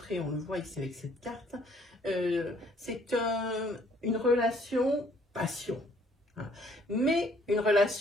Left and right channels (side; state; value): both; normal; correlation 0.62